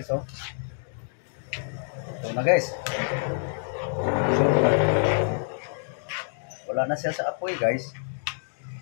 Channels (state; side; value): silent; right; digital silence